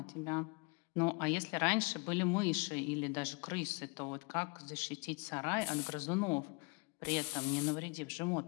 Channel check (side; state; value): right; quieter; 31.4 dB